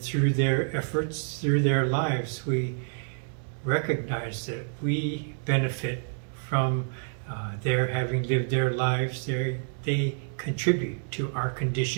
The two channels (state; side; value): silent; left; 59 dB below the other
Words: their efforts, through their lives, we recognize that we benefit from their having lived their lives. They contribute to our